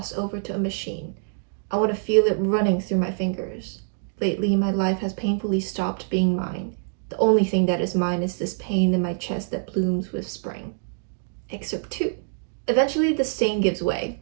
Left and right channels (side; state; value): left; silent; digital silence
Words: over to a machine. I want to feel it running through my fingers. Lately, my life has painfully stopped being mine. The only thing that is mine is this pain in my chest that blooms with spring. Excerpt 2. Eventually, the stain gives way.